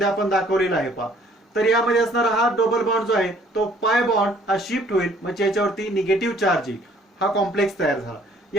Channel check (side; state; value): both; normal; correlation 0.59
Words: आपण दाखवलेला आहे पहा. तर यामध्ये असणारा हा डबल बॉन्ड जो आहे तो पाय बॉन्ड हा शिफ्ट होईल म्हणजे याच्यावरती निगेटिव्ह चार्ज येईल. हा कॉम्प्लेक्स तयार झाला.